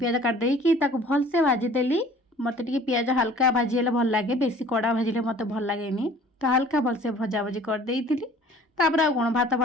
କାଟିଦେଇକି ତାକୁ ଭଲସେ ଭାଜିଦେଲି। ମୋତେ ଟିକେ ପିଆଜ ହାଲକା ଭାଜି ହେଲେ ଭଲ ଲାଗେ, ବେଶୀ କଡ଼ା ଭାଜିଲେ ମୋତେ ଭଲ ଲାଗେନି। ତ ହାଲକା ଭଲସେ ଭଜାଭଜି କରିଦେଇଥିଲି। ତାପରେ ଆଉ କ'ଣ ଭାତ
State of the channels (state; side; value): normal; both; correlation 0.50